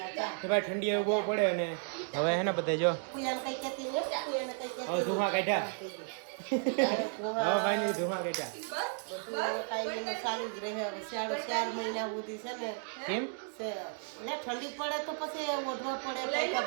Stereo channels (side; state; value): left; silent; 55 dB below the other